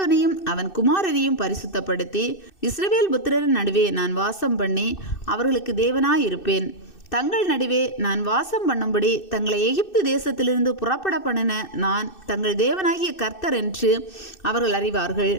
அவன் குமாரரையும் பரிசுத்தப்படுத்தி இஸ்ரவேல் புத்திரரின் நடுவே நான் வாசம் பண்ணி அவர்களுக்கு தேவனாயிருப்பேன். தங்கள் நடுவே நான் வாசம் பண்ணும்படி தங்களை எகிப்து தேசத்திலிருந்து புறப்பட பண்ணின நான் தங்கள் தேவனாகிய கர்த்தர் என்று அவர்கள் அறிவார்கள்.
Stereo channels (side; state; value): right; late; 2.6 ms